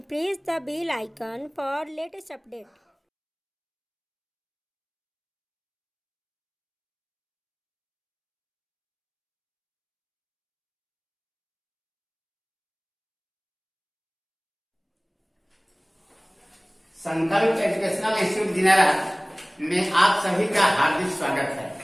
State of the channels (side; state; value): both; identical; correlation 1.00